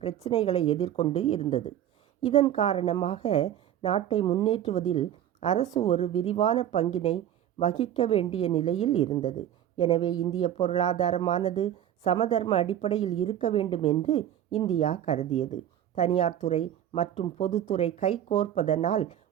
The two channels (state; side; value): quieter; left; 11.0 dB